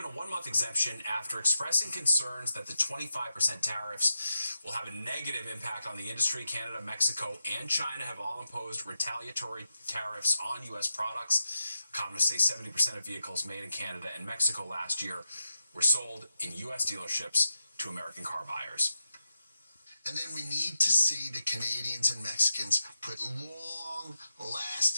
a 1-month exemption after expressing concerns that the 25% tariffs will have a negative impact on the industry. Canada, Mexico, and China have all imposed retaliatory tariffs on U.S. products. Economists say 70% of vehicles made in Canada and Mexico last year were sold in U.S. dealerships to American car buyers. And then we need to see the Canadians and Mexicans put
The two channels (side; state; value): both; inverted; correlation -0.90